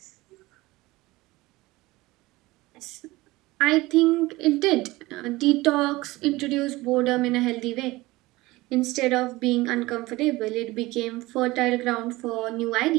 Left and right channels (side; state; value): left; quieter; 20.0 dB